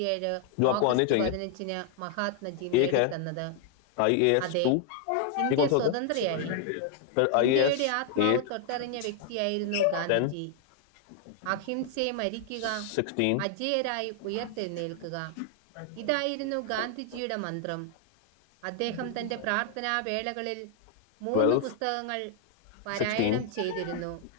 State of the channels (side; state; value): both; different; correlation 0.00